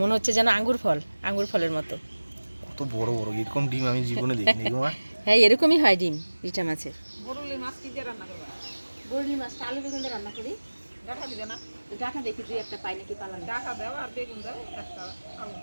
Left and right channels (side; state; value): both; inverted; correlation -1.00